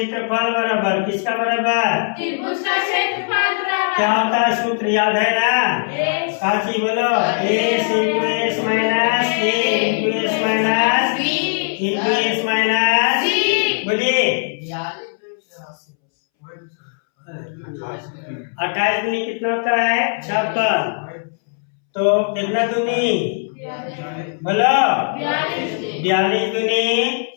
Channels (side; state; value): right; silent; 65 dB below the other